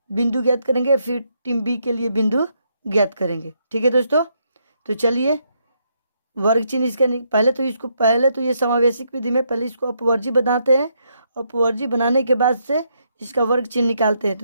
बिंदु ज्ञात करेंगे, फिर टीम बी के लिए बिंदु ज्ञात करेंगे। ठीक है दोस्तों, तो चलिए वर्ग चिन्ह इसका पहले तो ये समावेशिक विधि में पहले इसको अपवर्जी बनाते हैं। अपवर्जी बनाने के बाद से इसका वर्ग चिन्ह निकालते हैं।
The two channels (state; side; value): inverted; both; correlation -0.76